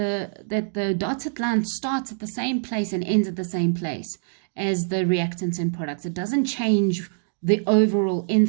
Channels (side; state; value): left; silent; digital silence